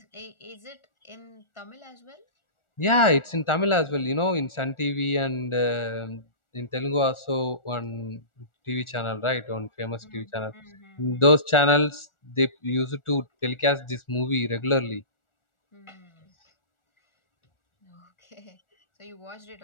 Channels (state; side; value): late; right; 1.4 ms